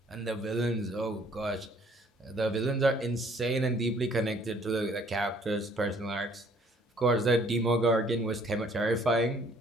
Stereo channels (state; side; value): normal; both; correlation 0.60